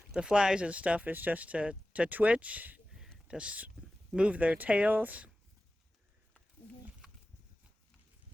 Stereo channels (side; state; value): both; normal; correlation 0.95